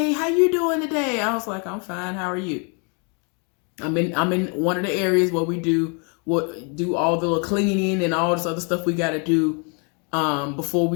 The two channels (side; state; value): right; quieter; 36.6 dB